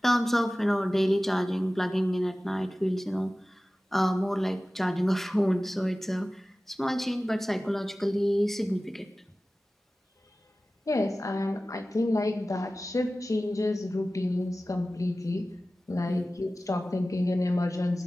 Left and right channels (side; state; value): both; normal; correlation 0.96